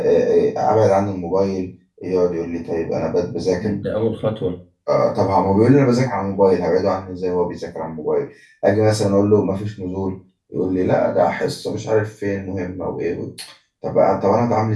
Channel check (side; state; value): both; identical; correlation 1.00